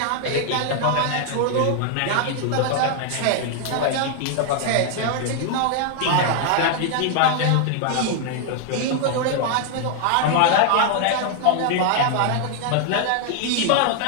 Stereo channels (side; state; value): both; different; correlation 0.00